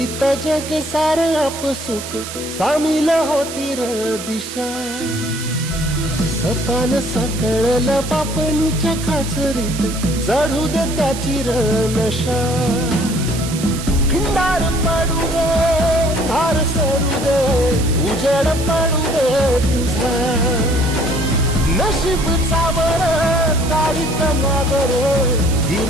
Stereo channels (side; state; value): right; noise; hiss, 10 dB below the sound